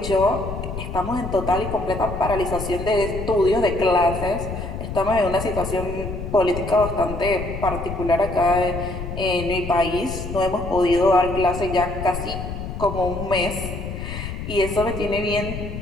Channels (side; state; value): left; noise; rumble, 7 dB below the sound